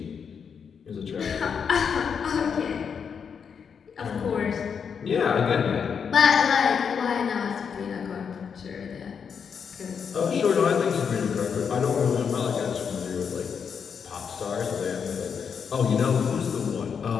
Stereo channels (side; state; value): right; quieter; 6.7 dB